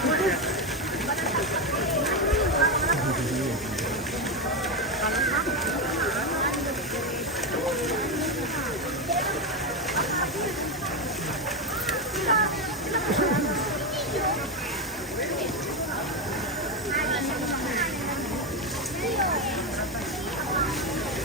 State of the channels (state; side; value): normal; both; correlation 0.10